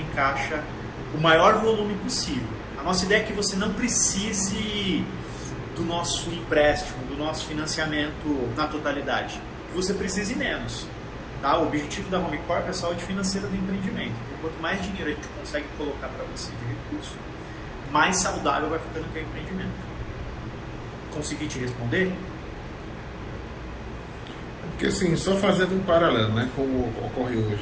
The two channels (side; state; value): both; identical; correlation 1.00